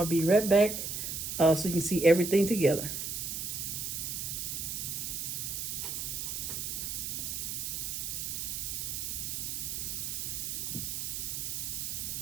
be right back so you can see everything together.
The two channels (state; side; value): noise; right; hiss, 3 dB below the sound